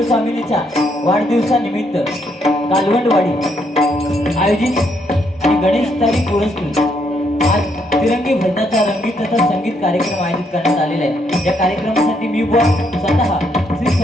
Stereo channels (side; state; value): both; normal; correlation 0.74